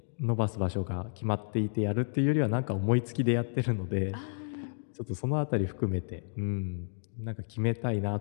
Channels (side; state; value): right; silent; digital silence